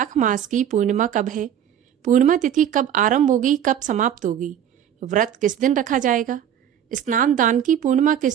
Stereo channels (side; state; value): left; quieter; 9.7 dB